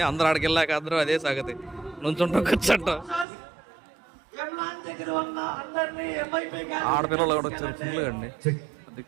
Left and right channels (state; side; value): drops out; left; at 3.2 s